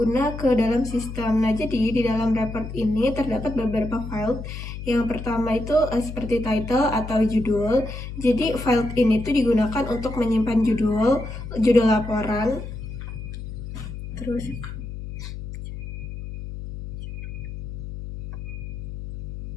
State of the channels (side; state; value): left; noise; hum, 9 dB below the sound